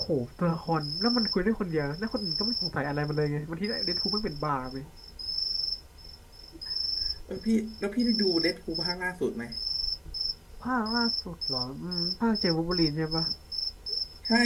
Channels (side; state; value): both; identical; correlation 1.00